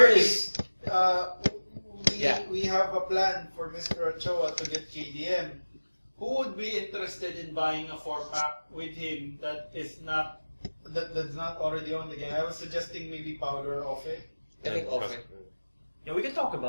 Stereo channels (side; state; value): both; inverted; correlation -1.00